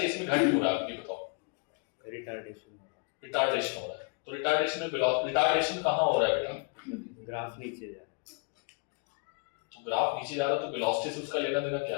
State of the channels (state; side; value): quieter; right; 34.4 dB